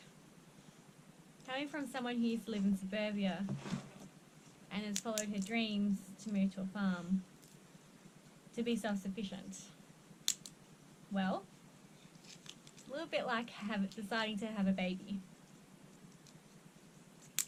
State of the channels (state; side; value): identical; both; correlation 1.00